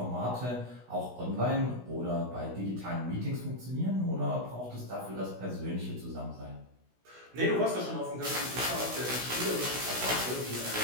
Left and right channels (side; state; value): left; late; 16 ms